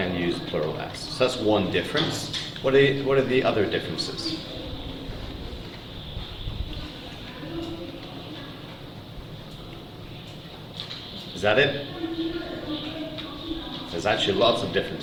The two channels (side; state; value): both; identical; correlation 1.00